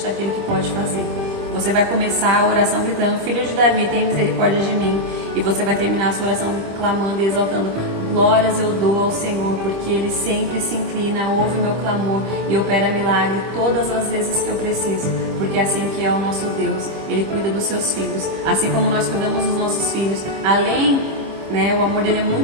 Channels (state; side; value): late; left; 25 ms